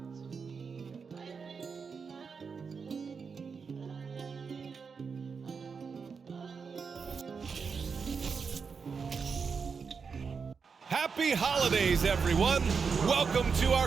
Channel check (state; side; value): quieter; left; 5.6 dB